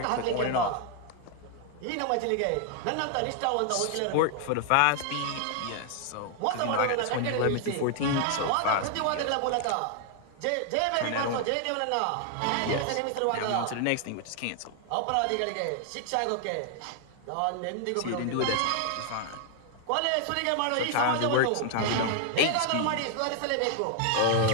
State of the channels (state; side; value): different; both; correlation 0.00